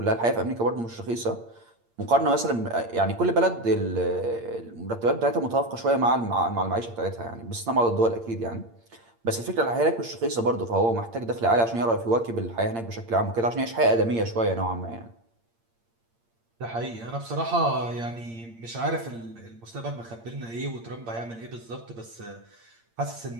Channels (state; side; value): late; left; 8.7 ms